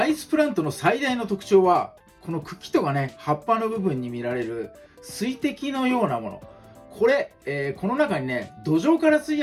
イスプラントの最大の特徴は、この茎とかね、葉っぱの部分に見られる水滴のようなもの。これ、この中にね、土壌から吸い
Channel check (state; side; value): identical; both; correlation 1.00